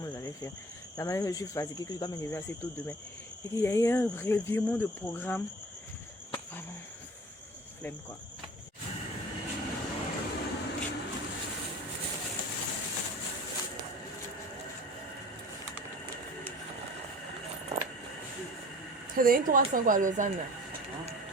je vais faire. La manière que je suis fatiguée, que je dois me lever assez tôt demain. Et qu'il y a eu un revirement de programme. Vraiment, flemme quoi. C'est donné 300 quoi à Lausanne.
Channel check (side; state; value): both; normal; correlation 0.42